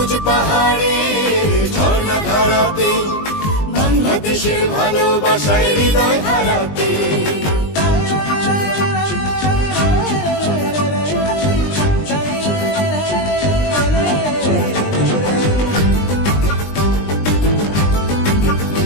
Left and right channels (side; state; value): right; late; 20 ms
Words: পাহাড়ের ঝর্ণা ধারাতে, বাংলাদেশের ভালোবাসায় হৃদয় হারাতে।